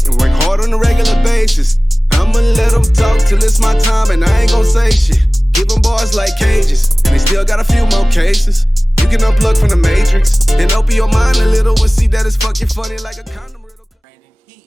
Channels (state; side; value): normal; both; correlation 0.98